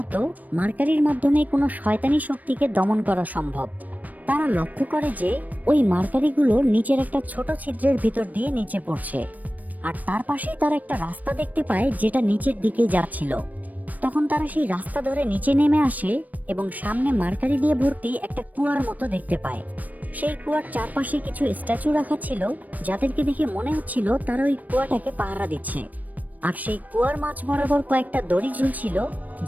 মার্কারির মাধ্যমে কোনো শয়তানি শক্তিকে দমন করা সম্ভব। তারা লক্ষ্য করে যে ওই মার্কারিগুলো নিচের একটা ছোট ছিদ্রের ভিতর দিয়ে নিচে পড়ছে, আর তার পাশেই তারা একটা রাস্তা দেখতে পায় যেটা নিচের দিকে যাচ্ছিল। তখন তারা সেই রাস্তা ধরে নিচে নেমে আসে এবং সামনে মার্কারি দিয়ে ভর্তি একটা কুয়ার মতো দেখতে পায়। সেই কুয়ার চারপাশে কিছু স্ট্যাচু রাখা ছিল, যাদেরকে দেখে মনে হচ্ছিল তারা ওই কুয়াটাকে পাহারা দিচ্ছে। আর সেই কুয়ার মাঝ বরাবর কয়েকটা দড়ি ঝুলছিল,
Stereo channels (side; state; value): left; late; 0.078 ms